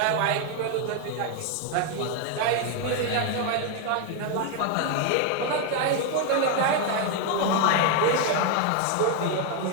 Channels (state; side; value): different; both; correlation 0.01